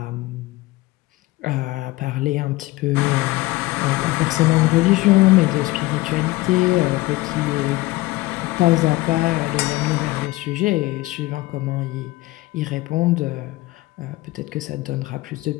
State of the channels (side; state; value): right; quieter; 19.4 dB